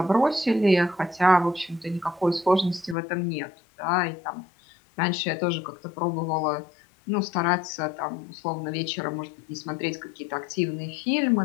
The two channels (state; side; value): drops out; right; at 3.0 s